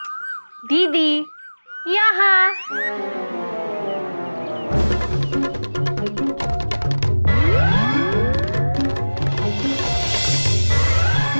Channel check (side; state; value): both; inverted; correlation -1.00